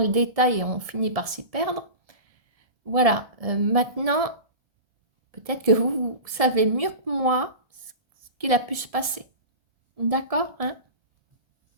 détail et on finit par s'y perdre. Voilà, maintenant, peut-être que vous savez mieux que moi ce qu'il a pu se passer. D'accord, hein?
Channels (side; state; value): left; late; 1.7 ms